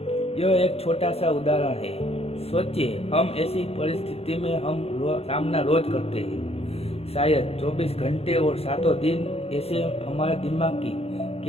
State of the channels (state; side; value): late; right; 0.29 ms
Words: यह एक छोटा सा उदाहरण है। सोचिए, हम ऐसी परिस्थिति में सामना रोज करते हैं। शायद 24 घंटे और 7 दिन ऐसे हमारे दिमाग की